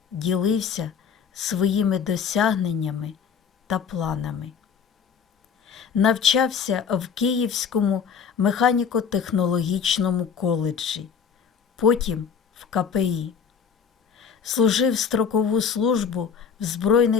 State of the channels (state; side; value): quieter; right; 6.7 dB